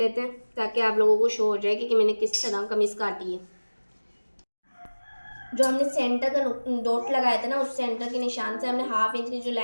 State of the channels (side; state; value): both; inverted; correlation -1.00